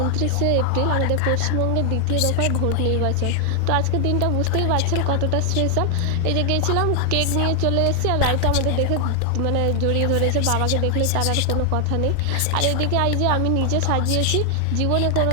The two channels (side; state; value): both; different; correlation 0.00